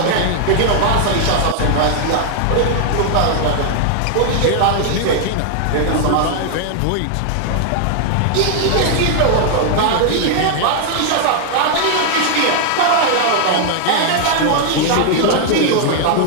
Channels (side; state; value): both; different; correlation 0.00